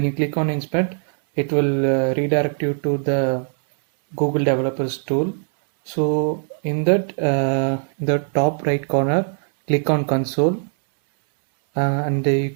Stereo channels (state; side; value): silent; left; 65 dB below the other